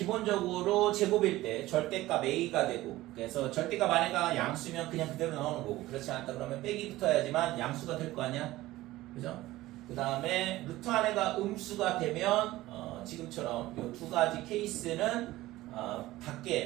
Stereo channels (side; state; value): left; quieter; 17.1 dB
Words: 제곱일 때 절대값 A가 되고 그래서 절대값 안에가 양수면 그냥 그대로 나오는 거고 그렇지 않다 그러면 빼기 붙어야지만 양수가 될 거 아니야. 그죠? 그 다음에 루트 안에가 음수가 되면 지금처럼 이 두 가지 케이스는